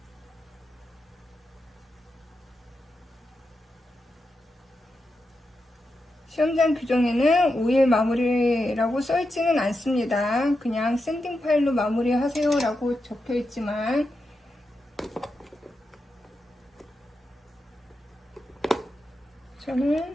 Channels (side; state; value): both; normal; correlation 0.88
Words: 시험장 규정에는 5일 마무리라고 써있지는 않습니다. 그냥 샌딩 파일로 마무리하세요 라고 적혀있지만